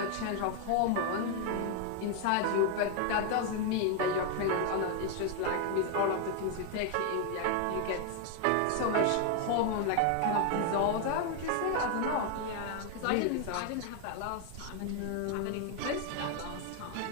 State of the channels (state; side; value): different; both; correlation 0.00